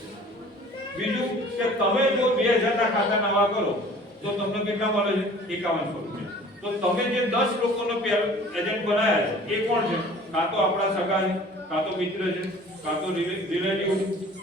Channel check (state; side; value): normal; both; correlation 0.48